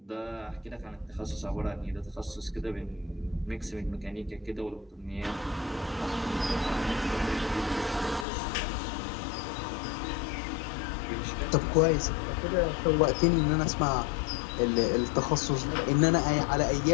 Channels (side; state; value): right; drops out; at 8.2 s